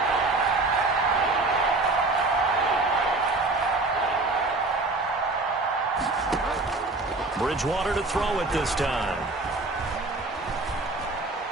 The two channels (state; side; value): quieter; left; 3.2 dB